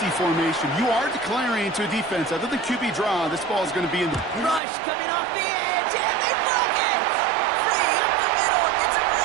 formation. You are declaring to a defense. Other than QB draw, this ball is going to be in the... Rush coming off the edge, and they broke it! Free up the middle. It's a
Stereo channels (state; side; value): drops out; left; at 4.6 s